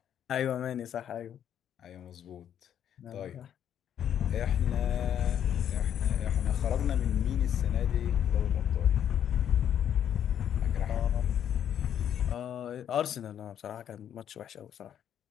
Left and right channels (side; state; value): right; quieter; 9.6 dB